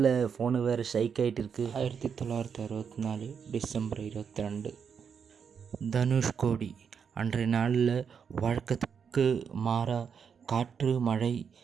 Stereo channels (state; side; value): quieter; left; 6.8 dB